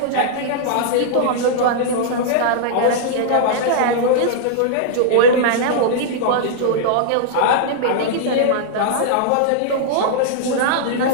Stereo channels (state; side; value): different; both; correlation -0.01